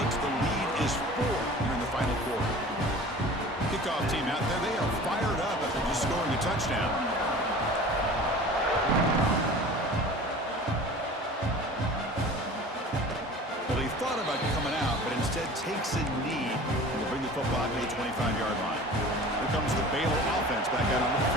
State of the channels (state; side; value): normal; both; correlation 0.41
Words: The lead is 4 here in the final quarter. Kickoff team out there. They are fired up after just scoring a touchdown. Well, he thought about coming out, but instead takes a knee to bring the football to the 25-yard line. Here comes the Baylor offense back out onto the